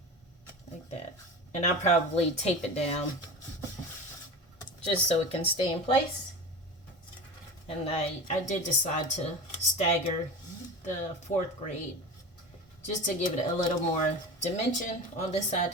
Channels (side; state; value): both; normal; correlation 0.29